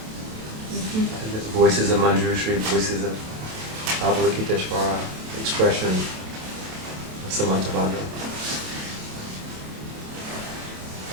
Mm-hmm. The voices of Manjushri, voices of Avalokiteshvara, expression of Samantabhadra.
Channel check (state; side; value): late; left; 28 ms